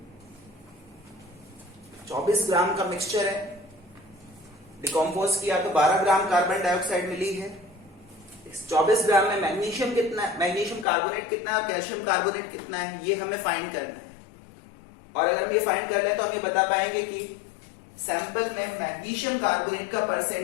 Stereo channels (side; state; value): right; drops out; at 10.9 s